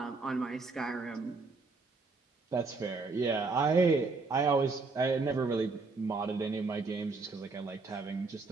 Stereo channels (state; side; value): quieter; left; 4.0 dB